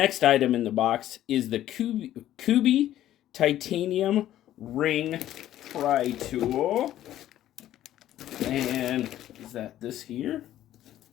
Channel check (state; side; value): quieter; right; 12.8 dB